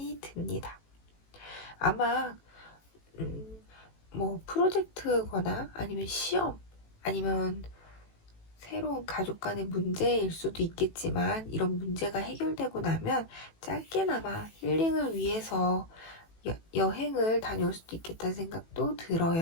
듭니다. 아마 뭐 프로젝트거나 아니면 시험 아니면 새로운 가족 간의 문제일 수도 있겠지만 이런 문제가 해결되고 나면 짧게나마 힐링을 위해서 여행을 다녀올 수도 있겠다는 생각도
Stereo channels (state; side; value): late; right; 18 ms